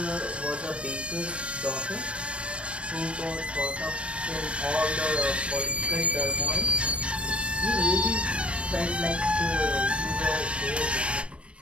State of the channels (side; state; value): left; late; 0.059 ms